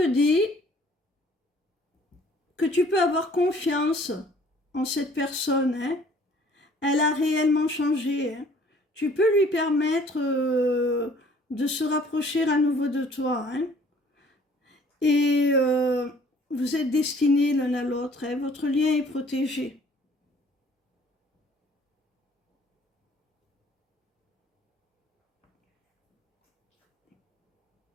dit que tu peux avoir confiance en cette personne. Hein. Elle a réellement changé. Hein. Tu peux lui permettre de se rapprocher à nouveau de toi. Hein. Et vous êtes destinés l'un à l'autre. Hein. Votre lien est protégé.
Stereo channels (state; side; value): normal; both; correlation 0.56